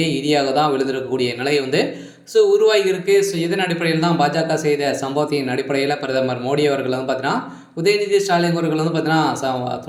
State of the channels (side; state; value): both; identical; correlation 1.00